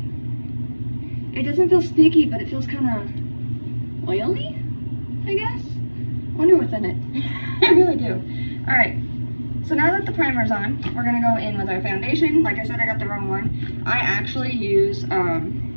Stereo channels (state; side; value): inverted; both; correlation -1.00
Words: It doesn't feel sticky, but it feels kind of oily, I guess. I wonder what's in it. I really do. Alright, so now that the primer's on, we're going to go in with our foundation. Like I said, I got the wrong one. I actually use,